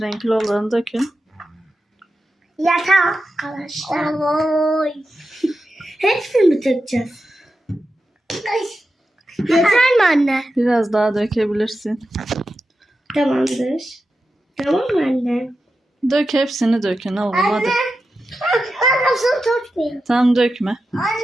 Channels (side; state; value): both; normal; correlation 0.91